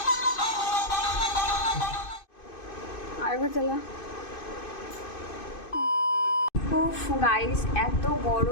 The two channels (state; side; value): late; right; 2.6 ms